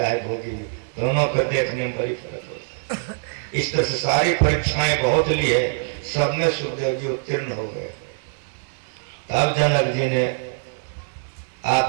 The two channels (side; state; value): left; silent; digital silence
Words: है भोगी भी, दोनों को देखने में बड़ी फर्क होता है। इस तरह से सारी परीक्षाएं बहुत ली है, सब में सुखदेव जी उत्तीर्ण हो गए। तब जनक जी ने